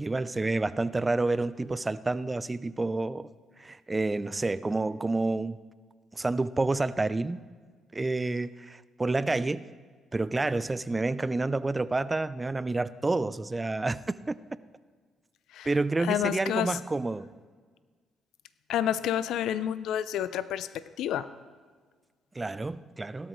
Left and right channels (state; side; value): normal; both; correlation 0.87